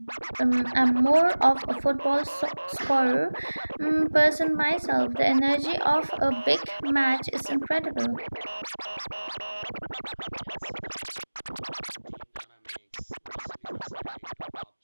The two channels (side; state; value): both; inverted; correlation -1.00